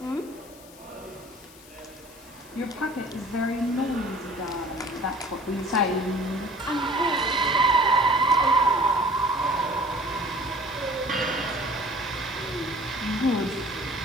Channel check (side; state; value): left; noise; hiss, 21 dB below the sound